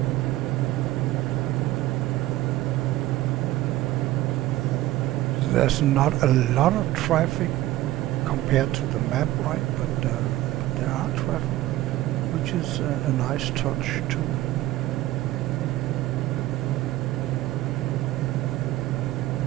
There's not a lot of traffic compared to the map, right? But there are traffic, which is a nice touch too.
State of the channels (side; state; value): left; quieter; 16.1 dB